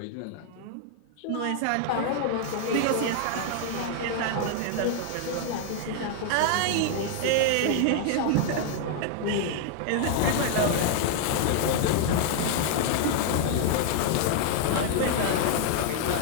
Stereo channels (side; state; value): both; different; correlation 0.00